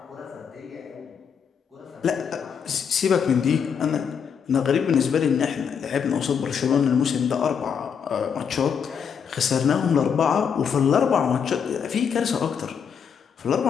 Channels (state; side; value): quieter; right; 7.1 dB